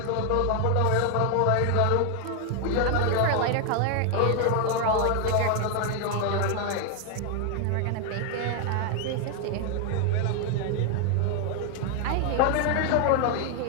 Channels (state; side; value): different; both; correlation 0.00